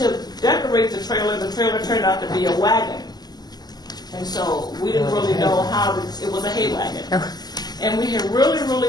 decorate the trailer turned out to be a wagon. And so we didn't really know how it was a hay wagon. And we had really,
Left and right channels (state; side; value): late; right; 0.20 ms